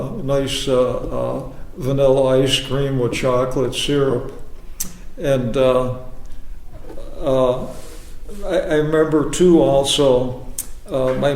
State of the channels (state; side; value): identical; both; correlation 1.00